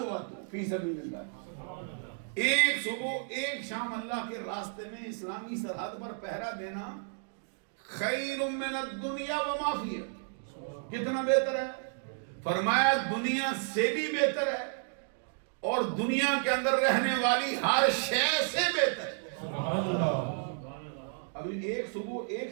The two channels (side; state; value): left; silent; digital silence